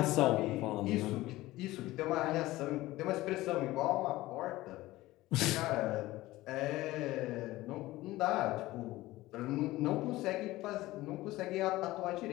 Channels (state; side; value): quieter; right; 17.8 dB